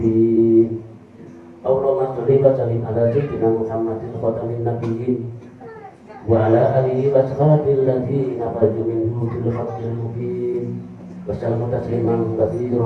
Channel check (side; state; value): both; identical; correlation 1.00